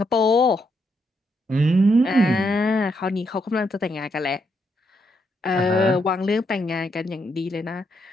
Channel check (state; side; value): normal; both; correlation 0.78